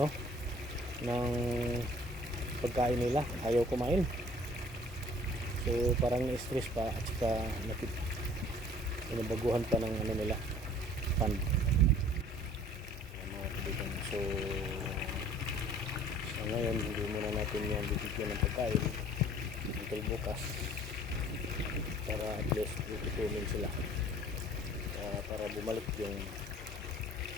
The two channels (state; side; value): normal; both; correlation 0.52